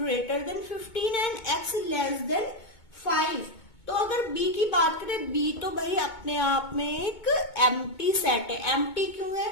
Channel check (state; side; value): late; right; 2.2 ms